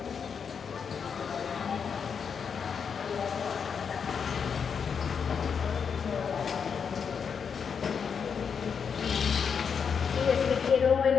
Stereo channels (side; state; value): right; quieter; 6.5 dB